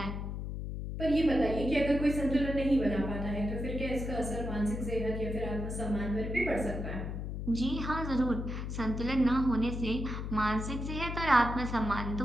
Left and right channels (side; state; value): left; noise; hum, 5 dB below the sound